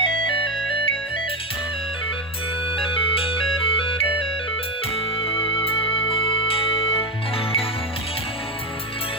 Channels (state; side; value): normal; both; correlation 0.11